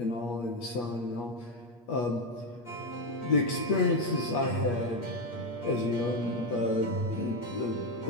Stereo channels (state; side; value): late; right; 8.4 ms